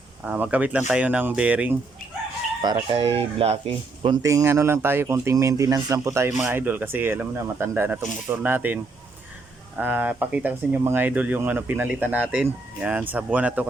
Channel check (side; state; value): left; quieter; 3.5 dB